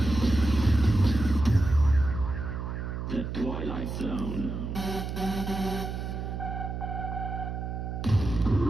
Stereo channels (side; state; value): right; noise; hum, 5 dB below the sound